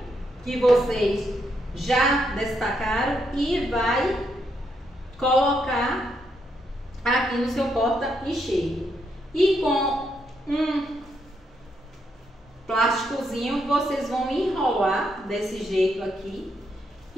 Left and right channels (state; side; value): normal; both; correlation 0.78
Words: que vocês já destacaram e vai colocar aqui no seu porta-enxerto. E com um plásticozinho vocês vão enrolar desse jeito aqui